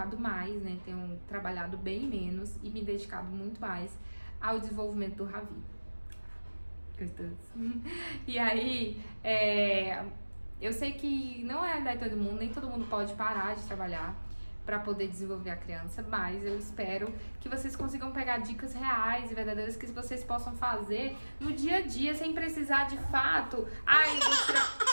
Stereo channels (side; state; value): both; inverted; correlation -1.00